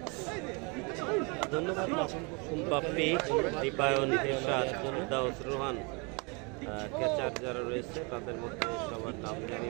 ধন্যবাদ বাপ্পি, দীপায়ন, ইরশাদ, দাউস, রোহান, ক্যাচার যারা রয়েছে তাদের মধ্যে সবার নাম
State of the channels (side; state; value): left; quieter; 31.3 dB